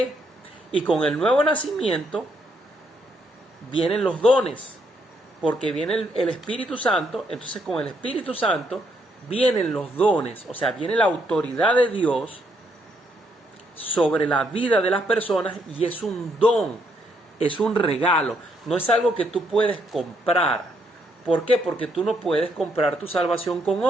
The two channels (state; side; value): normal; both; correlation 0.74